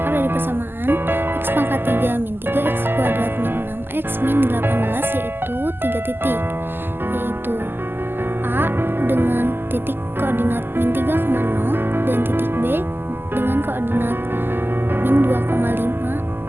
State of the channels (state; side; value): late; left; 0.099 ms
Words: dari persamaan x pangkat 3 min 3x kuadrat min 6x min 18 yaitu 3 titik, yaitu A dengan titik koordinat min 3,0 dan titik B dengan koordinat min 2,5